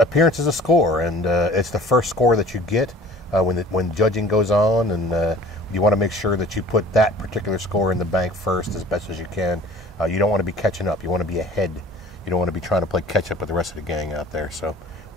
score, and it's the first score that you get when judging goes on, and you want to make sure that you put that particular score in the bank first as best as you can. You don't want to be catching up. You want to be ahead. You don't want to be trying to play catch up with the rest of the gang out there. So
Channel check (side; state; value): both; normal; correlation 0.47